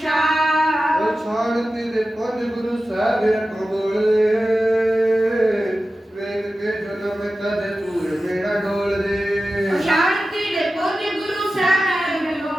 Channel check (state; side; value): normal; both; correlation 0.94